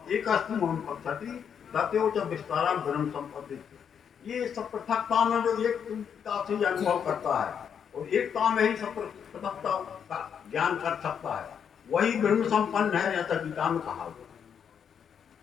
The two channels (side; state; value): right; quieter; 7.7 dB